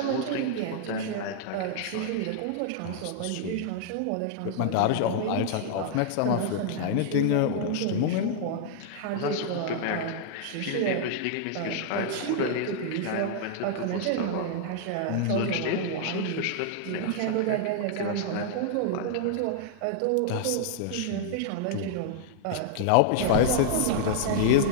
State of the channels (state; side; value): different; both; correlation -0.01